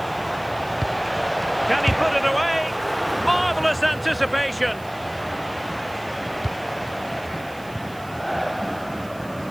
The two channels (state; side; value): noise; right; hiss, 23 dB below the sound